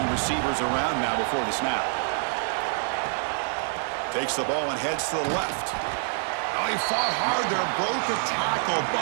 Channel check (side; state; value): left; silent; 61 dB below the other